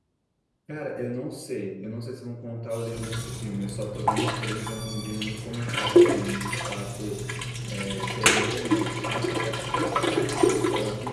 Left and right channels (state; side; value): identical; both; correlation 1.00